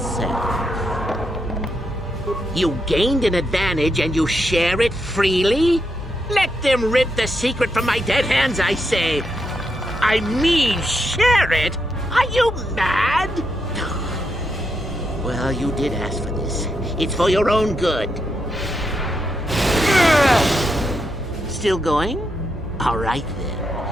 You gained an advantage and you share it freely? Let them rip the secret from my dead hands, I say. I mean, share it? Are you mad? Well, you did ask for this. It's for your own good. Still going? All right,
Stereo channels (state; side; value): normal; both; correlation 0.82